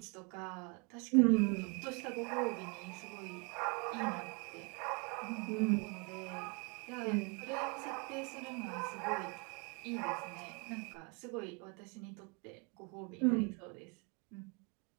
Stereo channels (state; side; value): quieter; left; 32.3 dB